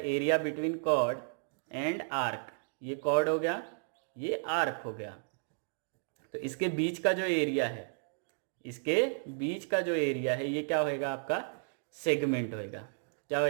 between chord and arc. ये कॉर्ड हो गया, ये आर्क हो गया, तो इसके बीच का जो एरिया है, इसके बीच का जो एरिया है, ये क्या होएगा आपका, सेगमेंट होएगा। क्या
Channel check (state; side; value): silent; left; digital silence